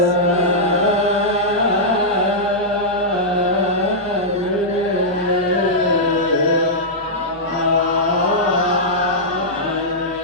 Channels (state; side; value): normal; both; correlation -0.11